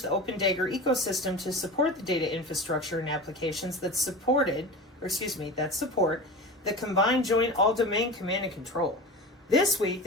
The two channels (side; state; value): both; normal; correlation 0.31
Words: the Open Dagger ecosystem to support the data infrastructure and applications that support the combined joint all-domain command and control. This week,